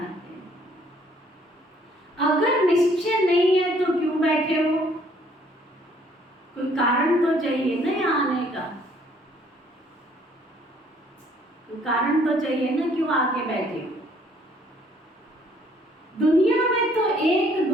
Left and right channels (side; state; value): both; normal; correlation 0.62